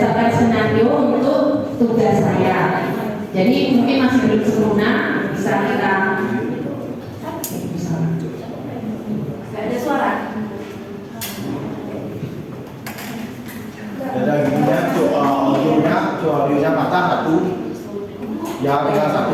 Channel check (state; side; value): identical; both; correlation 1.00